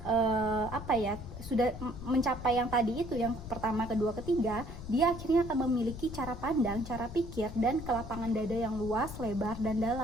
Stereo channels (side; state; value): left; noise; rumble, 11 dB below the sound